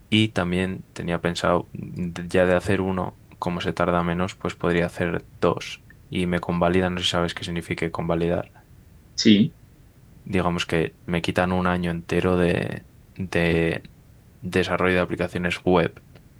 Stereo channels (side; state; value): both; identical; correlation 1.00